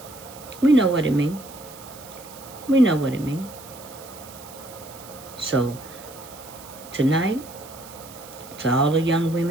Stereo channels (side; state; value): right; noise; hiss, 18 dB below the sound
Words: we know what it means. We know what it means. So, tonight, to all the young